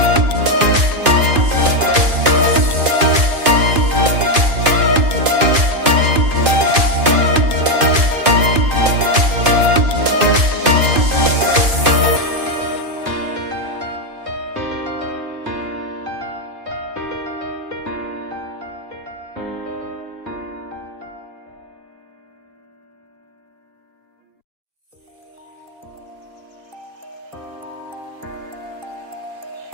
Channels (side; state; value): left; late; 2.5 ms